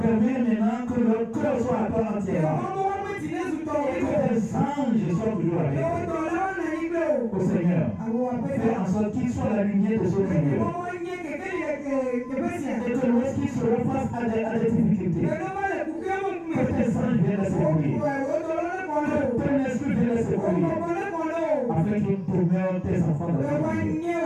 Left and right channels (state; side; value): identical; both; correlation 1.00